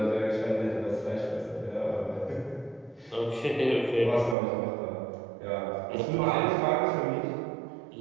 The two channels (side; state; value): left; drops out; at 4.4 s